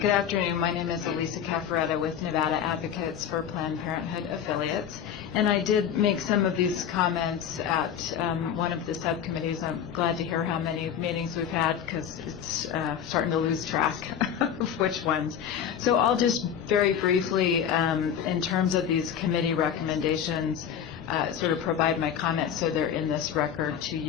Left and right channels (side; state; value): right; quieter; 8.7 dB